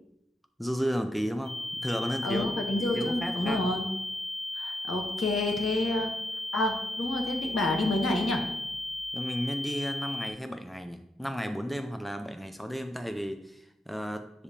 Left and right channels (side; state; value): both; normal; correlation 0.82